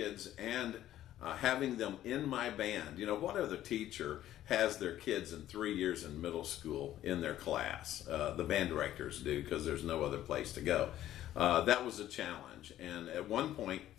and having them in my band, what other teacher has their kids in 3 years in middle school in their class? The band directors do, because there's no other place to go. That was a challenge. And at one point,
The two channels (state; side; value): quieter; right; 12.9 dB